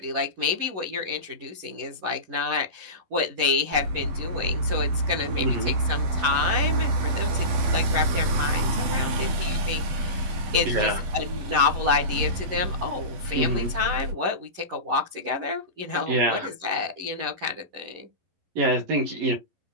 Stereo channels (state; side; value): late; left; 11 ms